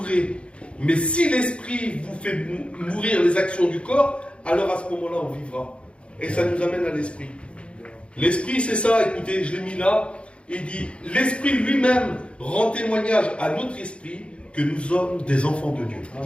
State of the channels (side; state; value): right; late; 0.059 ms